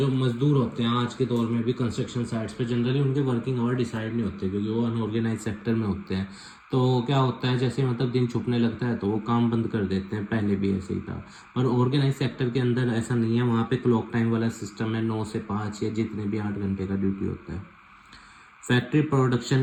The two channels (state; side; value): identical; both; correlation 1.00